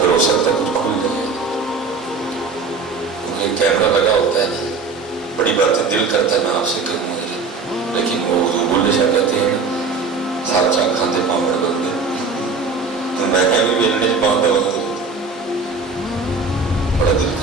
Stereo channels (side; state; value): left; quieter; 4.3 dB